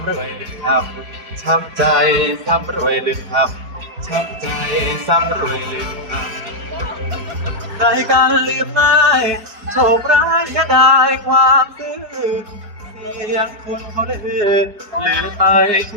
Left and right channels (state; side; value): late; left; 4.8 ms